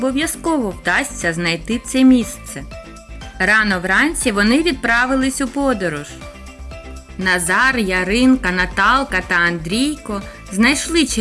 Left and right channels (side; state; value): both; identical; correlation 1.00